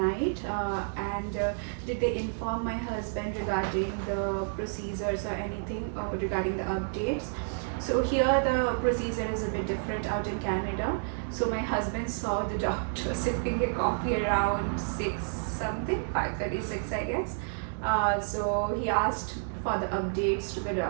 Did they inform my husband regarding the procedures or anything regarding the updates? So here the procedure is a bit different out in Canada. So my husband saw the doctor sipping a coffee around 6 something, 5:36 I guess. So he asked for the updates to the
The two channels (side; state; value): left; silent; digital silence